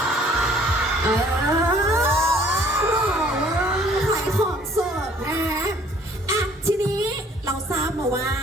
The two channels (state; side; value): normal; both; correlation 0.57